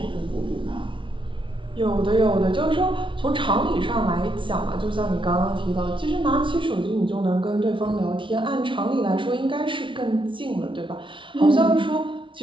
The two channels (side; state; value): left; late; 0.25 ms